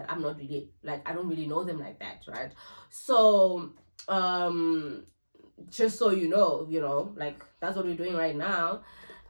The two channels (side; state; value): both; inverted; correlation -1.00